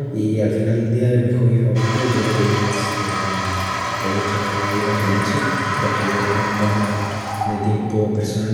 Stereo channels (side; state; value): both; identical; correlation 1.00